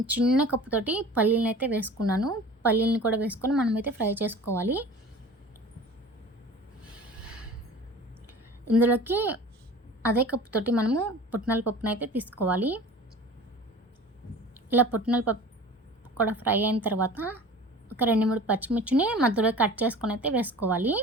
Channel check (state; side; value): normal; both; correlation 0.41